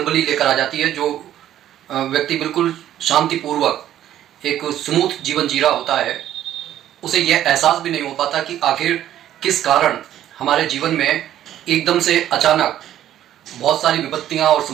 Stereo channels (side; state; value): left; quieter; 11.9 dB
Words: लेकर आ जाती है। जो व्यक्ति बिल्कुल शांतिपूर्वक एक स्मूथ जीवन जी रहा होता है, उसे यह एहसास भी नहीं हो पाता कि आखिर किस कारण हमारे जीवन में एकदम से अचानक बहुत सारी विपत्तियां और